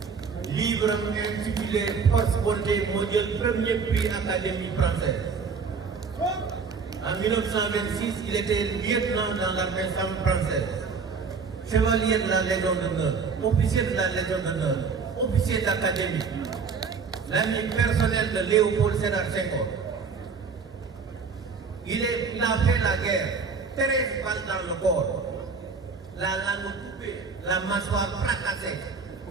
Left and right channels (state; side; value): quieter; left; 5.3 dB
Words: livre am intitulé Post-Bonté moo jël premier prix académie française. En 1926, il était lieutenant dans l'armée française, chevalier de la Légion d'honneur, officier de la Légion d'honneur, officier d'académie, l'ami personnel de Léopold Sédar Senghor. Il a fait la guerre, 13 balles dans le corps, la langue coupée, la mâchoire fracassée,